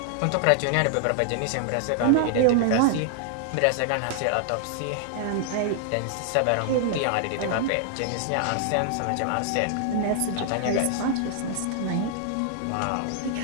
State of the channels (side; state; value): both; different; correlation -0.01